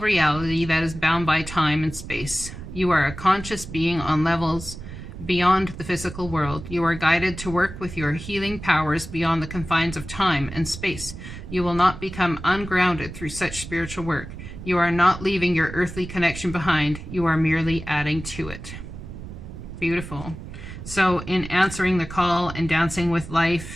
reality that is bound by time and space. You are a conscious being on levels beyond the physical world. You are guided to work with your healing powers beyond the confines of time and space. You will not become ungrounded through such spiritual work. You are not leaving your earthly connection behind. You are merely adding to it. Beautiful. So in answering the call and dancing with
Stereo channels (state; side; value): noise; right; rumble, 11 dB below the sound